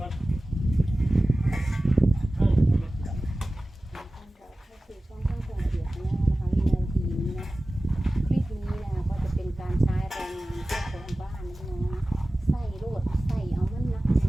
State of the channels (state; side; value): normal; both; correlation 0.97